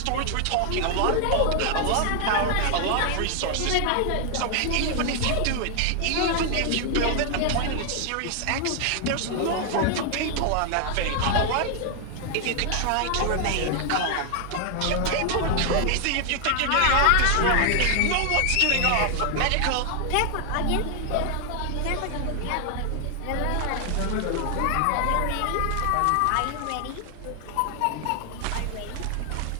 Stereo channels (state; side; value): different; both; correlation 0.00